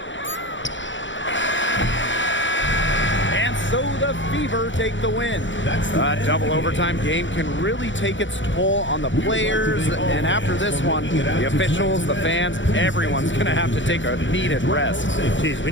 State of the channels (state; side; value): late; right; 0.55 ms